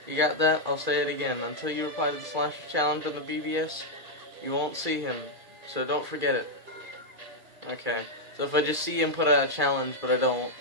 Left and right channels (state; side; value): late; left; 2.4 ms